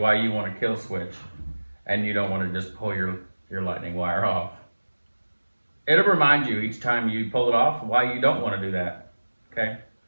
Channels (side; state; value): both; inverted; correlation -1.00